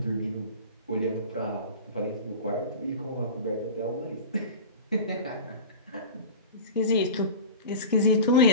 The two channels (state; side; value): inverted; both; correlation -0.33